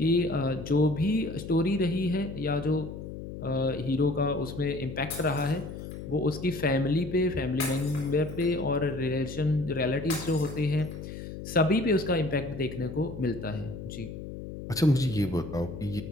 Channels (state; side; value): noise; left; hum, 10 dB below the sound